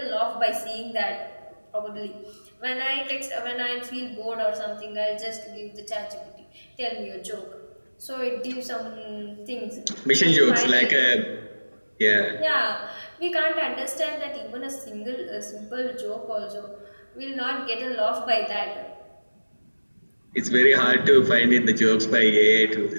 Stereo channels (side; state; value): both; inverted; correlation -1.00